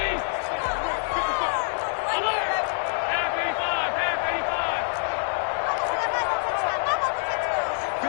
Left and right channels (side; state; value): right; silent; 58 dB below the other